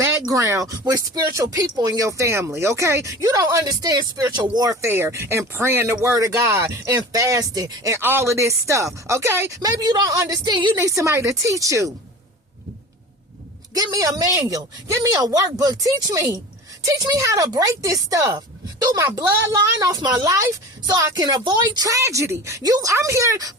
with spiritual people in your family, okay? You don't understand spiritual warfare and praying the word of God and fasting and all of this stuff, okay? Maybe you don't understand. You need somebody to teach you. Give me a manual. Give me a workbook. Teach me. Teach me how to break this stuff through my bloodline, off my life, so I can avoid tragedy. I'm here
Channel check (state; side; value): normal; both; correlation 0.36